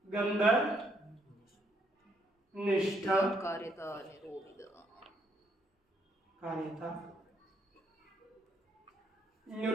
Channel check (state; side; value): normal; both; correlation 0.72